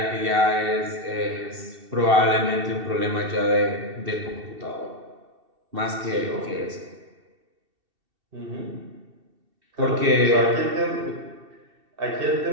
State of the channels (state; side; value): late; left; 2.7 ms